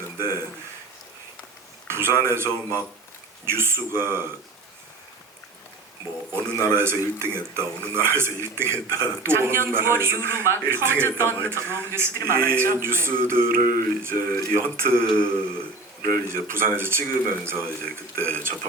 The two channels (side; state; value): left; quieter; 3.3 dB